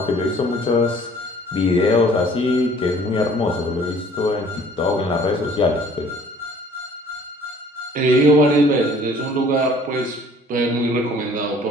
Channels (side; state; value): both; normal; correlation 0.54